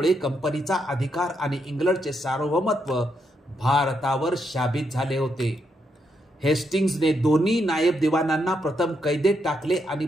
कंपनीचा अधिकार आणि इंग्लंडचे सार्वभौमत्व भारतावर शाबित झाले होते. हेस्टिंग्सने दोन्ही नायब दिवाणांना प्रथम कैदेत टाकले आणि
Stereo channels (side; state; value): both; normal; correlation 0.79